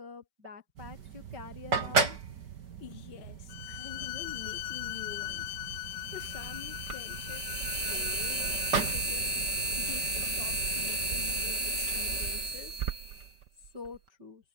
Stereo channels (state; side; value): late; left; 5.2 ms